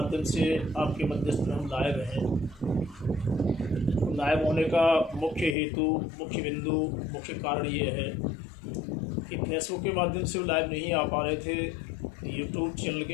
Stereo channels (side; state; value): right; drops out; at 5.6 s